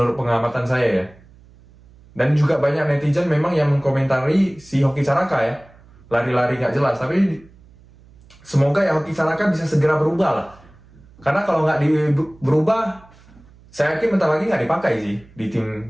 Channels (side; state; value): right; noise; hum, 26 dB below the sound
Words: pengamatan saya ya. Dan juga banyak netizen memang yang mengkomentari si Hoki Caraka ya. Lari-lari nggak jelas, tapi semoga ya Hoki Caraka bisa segera berubah lah. Karena kalau nggak berubah, saya yakin bentar lagi nggak dipakai sih di